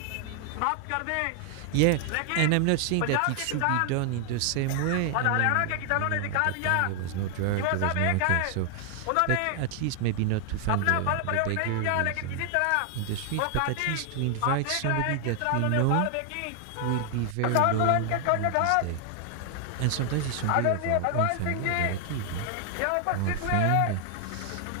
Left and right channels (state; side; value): different; both; correlation 0.00